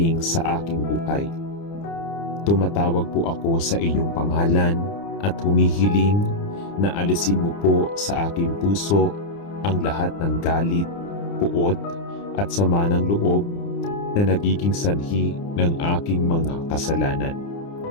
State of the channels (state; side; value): late; right; 30 ms